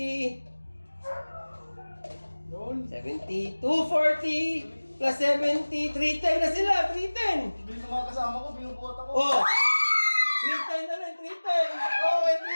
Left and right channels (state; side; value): inverted; both; correlation -1.00